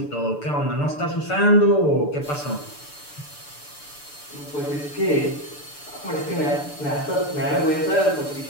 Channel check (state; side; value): late; right; 6.8 ms